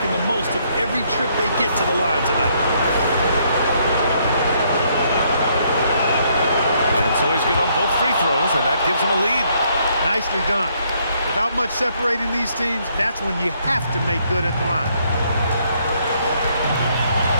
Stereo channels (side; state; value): both; inverted; correlation -0.70